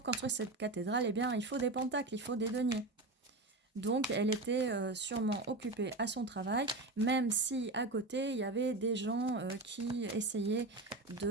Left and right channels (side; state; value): left; quieter; 3.0 dB